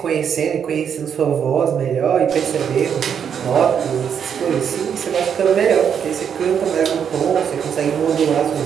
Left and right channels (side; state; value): left; quieter; 7.8 dB